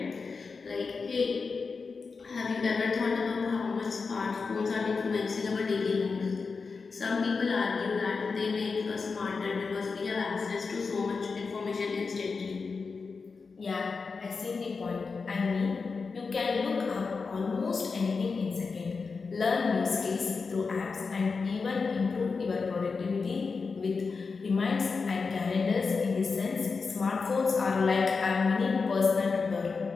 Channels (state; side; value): quieter; right; 4.7 dB